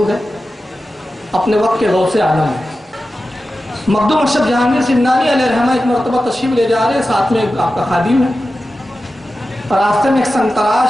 ہے، اپنے وقت کے غوث عالم ہے. مخدوم اشرف جہانگیر سمنانی علیہ رحمہ ایک مرتبہ تشریف لے جا رہے ہیں، ساتھ میں آپ کا خادم ہے، اور راستے میں ایک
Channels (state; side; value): normal; both; correlation 0.93